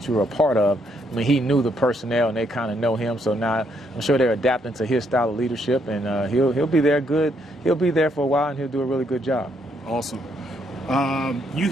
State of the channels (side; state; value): both; normal; correlation 0.73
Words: you were a part of, I mean, he knew the personnel and they kind of know him. So now I'm sure they're adapting to his style of leadership, and he'll be there good. He'll be there for a while, and he'll do a really good job. Awesome. You